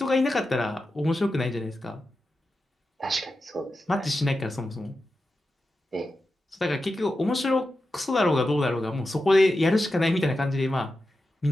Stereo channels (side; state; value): both; normal; correlation 0.91